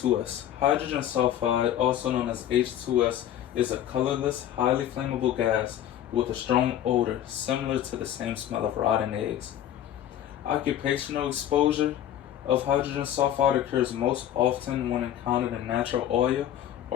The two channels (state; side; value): quieter; right; 11.2 dB